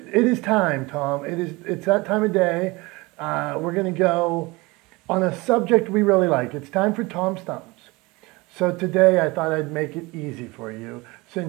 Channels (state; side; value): quieter; left; 23.7 dB